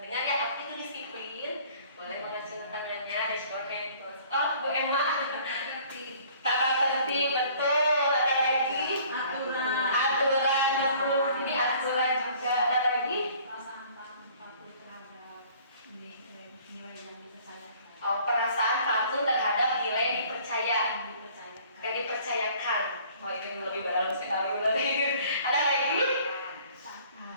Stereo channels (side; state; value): both; inverted; correlation -0.54